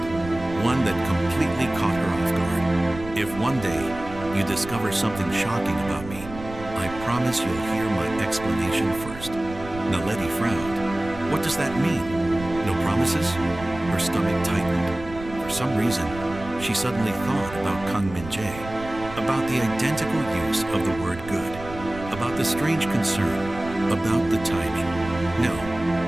One that completely caught her off guard. If one day you discover something shocking about me, I promise you'll hear my explanation first. Naledi frowned. What does that mean? No promises? Her stomach tightened. For some reason, she suddenly thought about Kang Min-Jae, about the identical use of the word good, about the strange concern, about the timing. No,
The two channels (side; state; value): right; noise; rumble, 13 dB below the sound